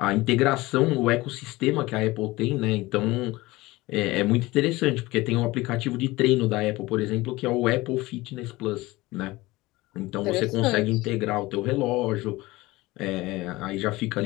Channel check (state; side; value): quieter; right; 20.2 dB